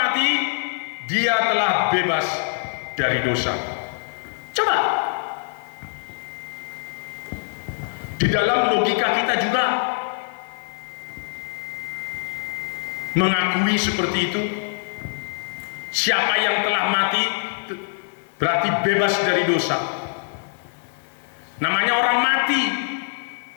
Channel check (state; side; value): silent; right; 63 dB below the other